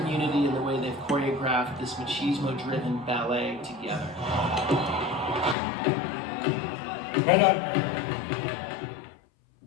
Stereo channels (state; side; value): drops out; right; at 5.6 s